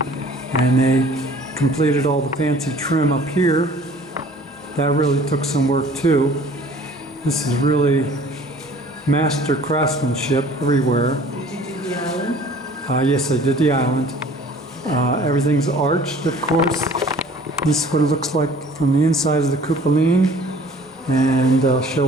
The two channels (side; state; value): both; normal; correlation 0.50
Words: And they completed all the fancy trim up here. That really took some work too. This is really master craftsmanship everywhere. Did you do the island? Yes, I did the island. Everything's arched, of course. This is what it looks like from the inside of the cupoline. And I'll show